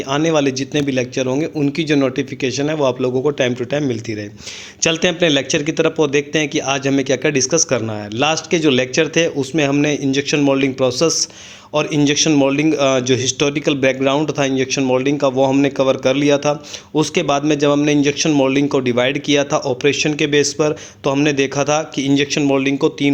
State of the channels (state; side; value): identical; both; correlation 1.00